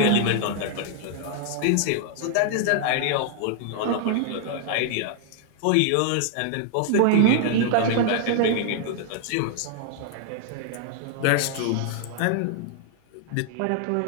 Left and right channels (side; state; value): both; different; correlation 0.00